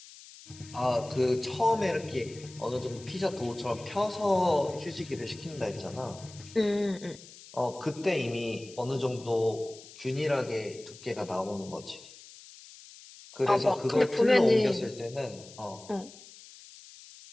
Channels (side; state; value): left; noise; hiss, 19 dB below the sound